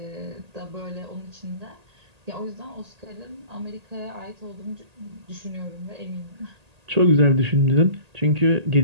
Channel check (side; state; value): left; late; 1.8 ms